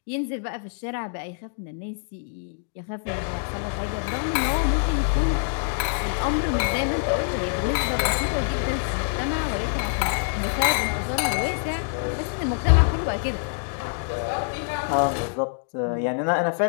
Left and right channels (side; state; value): right; silent; digital silence